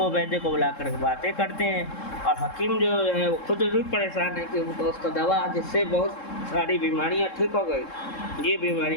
वैद्य को बुलाकर बातें करते हैं और हकीम जो है वो खुद भी परेशान है कि उनको उसका दवा जिससे बहुत सारी बीमारियाँ ठीक हो गई, ये बीमारी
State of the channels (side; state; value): right; late; 3.7 ms